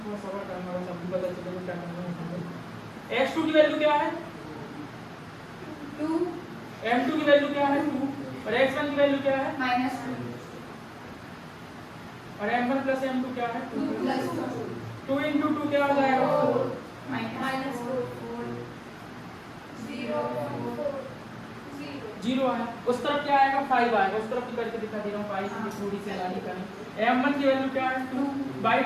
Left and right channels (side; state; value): both; identical; correlation 1.00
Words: थोड़ा सबर करना होगा, सबको पता चलेगा क्या करना है। x2 की वैल्यू क्या है 2 m2 की वैल्यू क्या है 2 और x1 की वैल्यू क्या है -2 और m1 प्लस m2 क्या है 2 + 2 into 2 क्या हो जाएगा 4 0 आया। उस तरफ क्या आएगा 5 आएगा, उस तरफ भी करके दिखा दे रहा हूँ 5 की थोड़ी सी लानी करें। m1 की वैल्यू क्या है 2,